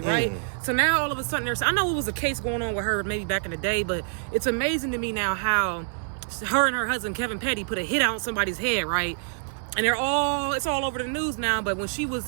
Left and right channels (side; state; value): left; silent; 61 dB below the other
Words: right? So now all of a sudden, I know it was a case going on with her maybe back in the day, but it's amazing to me now how her and her husband, Kevin Petty, put a hit out on somebody's head, right? And it's all over the news now, but when she